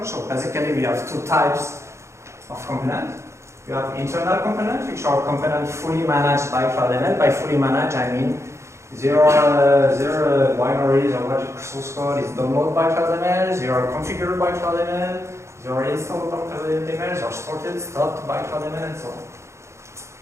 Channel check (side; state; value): left; late; 0.14 ms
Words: So basically we have two types of component. You have internal components, which are components fully managed by CloudML. By fully managed, I mean their binaries or what source code is downloaded by CloudML, they are configured by CloudML, they are installed by CloudML, they are sorted, stopped by CloudML, and so on.